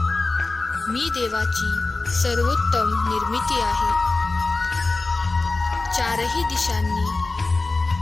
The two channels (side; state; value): right; quieter; 3.4 dB